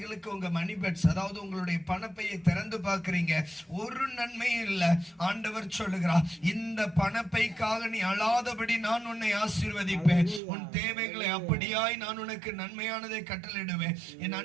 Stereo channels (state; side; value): drops out; left; at 10.4 s